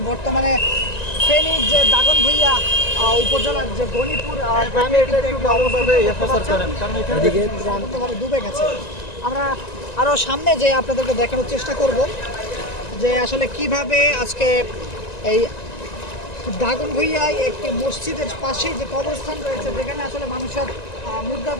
বর্তমানে ফেনীর যে দাগনভূঞা উপজেলার যে গণিপুর গ্রামে ডুবে গেছে। আমরা আরও সামনে যে আপনাদেরকে দেখানোর চেষ্টা করব যে আসলে কিভাবে আজকে এই দাগনভূঞায় একটি মসজিদের পাশেই যে কবরস্থান রয়েছে, যেখানে আসলে মানুষের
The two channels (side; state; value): right; late; 1.9 ms